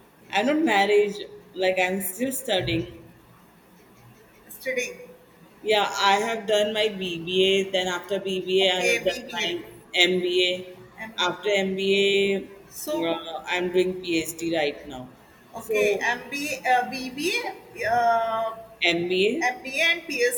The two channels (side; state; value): both; identical; correlation 1.00